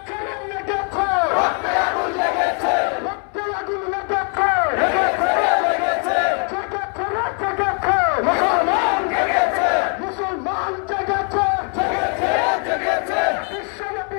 লেগেছে, রক্তে আগুন লেগেছে, রক্তে আগুন লেগেছে, লেগেছে, লেগেছে, জেগেছে, জেগেছে, মুসলমান জেগেছে, মুসলমান জেগেছে, জেগেছে, জেগেছে।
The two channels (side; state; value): right; quieter; 40.0 dB